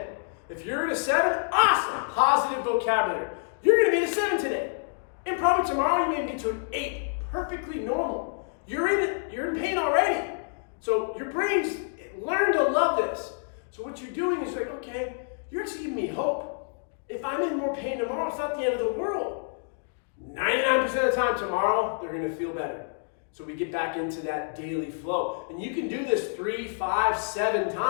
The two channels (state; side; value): silent; right; digital silence